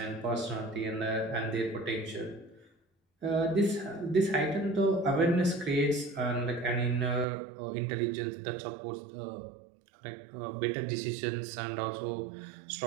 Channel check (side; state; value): left; drops out; at 7.2 s